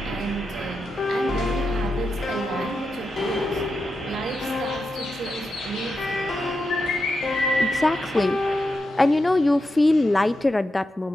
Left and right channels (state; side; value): normal; both; correlation 0.87